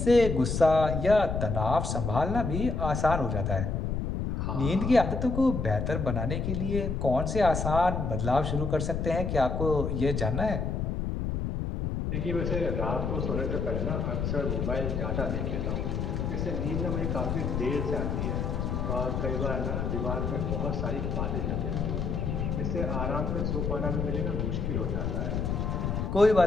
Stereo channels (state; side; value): noise; left; rumble, 1 dB below the sound